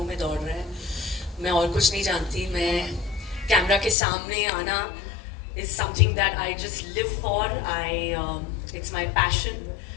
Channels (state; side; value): drops out; right; at 4.0 s